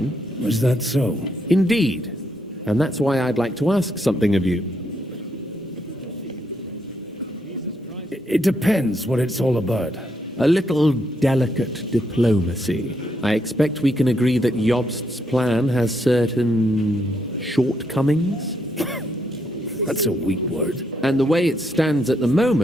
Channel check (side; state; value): both; normal; correlation 0.77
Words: Was that so? Indeed. And that's why I'd like to ask something of you. It depends what it's all about. A little delicate diplomacy. I expect we can agree that Jobst's plan has certain shortcomings. That's a weak word. And the way it stands at the